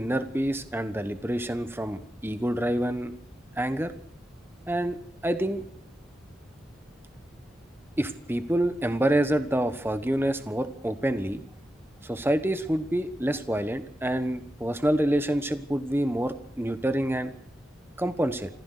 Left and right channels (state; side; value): normal; both; correlation 0.89